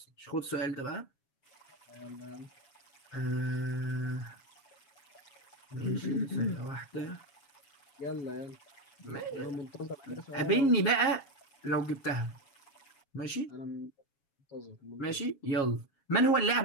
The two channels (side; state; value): right; late; 7.3 ms